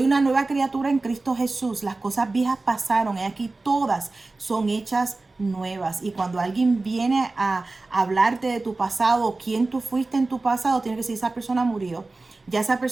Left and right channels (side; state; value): left; quieter; 3.4 dB